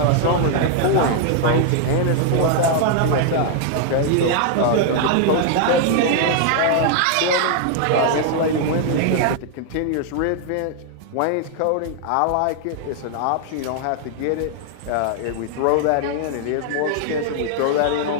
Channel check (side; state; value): both; different; correlation 0.00